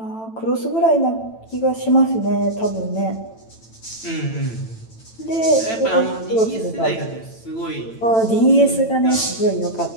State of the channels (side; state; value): right; late; 9.0 ms